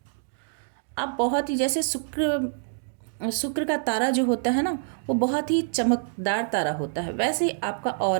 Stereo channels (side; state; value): left; silent; digital silence